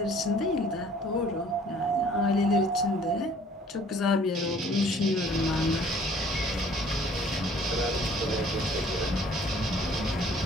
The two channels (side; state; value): both; normal; correlation 0.55